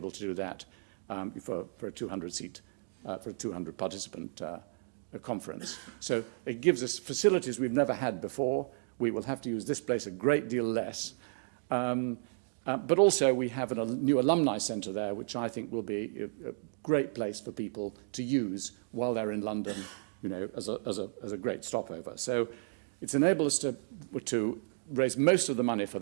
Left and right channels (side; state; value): left; silent; digital silence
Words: to do that for a 200-seat, for a 200-participant conference. So it gives us facilities we've never had before. We will have to use this place a great deal less. But also we have a new alumni centre there, which I think will be a great place for people to use while they're in London, you know, as a great stopover. So it's enabled us to raise most of the money for